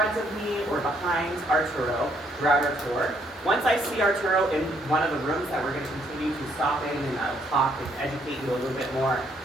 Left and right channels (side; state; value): both; normal; correlation 0.69